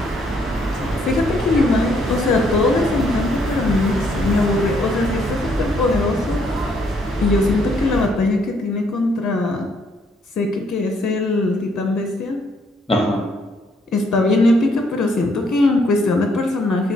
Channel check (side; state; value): both; normal; correlation 0.69